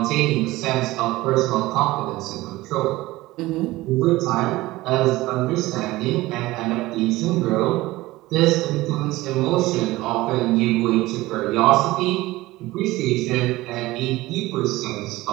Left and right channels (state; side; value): quieter; left; 18.6 dB